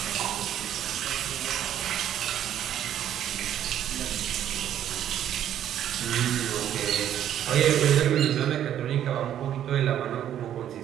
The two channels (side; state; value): left; quieter; 10.7 dB